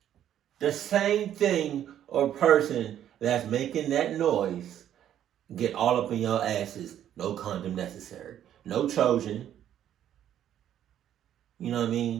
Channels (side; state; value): left; quieter; 10.8 dB